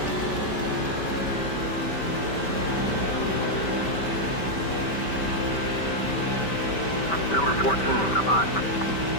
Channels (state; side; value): late; right; 5.2 ms